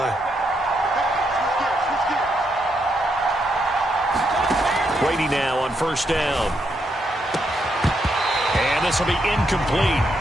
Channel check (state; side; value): normal; both; correlation 0.79